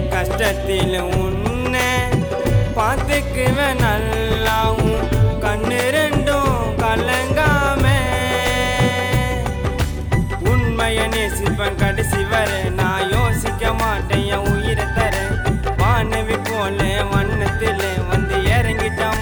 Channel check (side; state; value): both; identical; correlation 1.00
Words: கஷ்டத்தில் உன்னை பார்த்துக்குவேன் நல்லாவும் கண்ணு ரெண்டும் கலங்காமே உண்மைய நேசிப்பேன் கடைசி வர நான் யோசிக்க மாட்டேன் என் உயிரை தர வானவி போல வண்ணத்துல வந்து இறங்கிட்ட